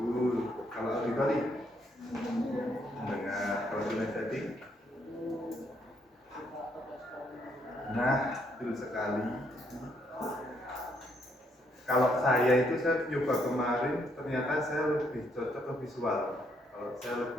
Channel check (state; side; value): normal; both; correlation 0.72